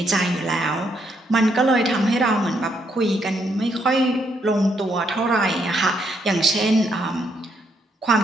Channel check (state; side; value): normal; both; correlation 0.74